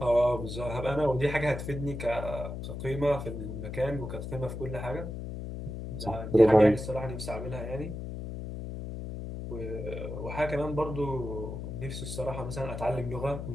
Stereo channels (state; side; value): noise; left; hum, 7 dB below the sound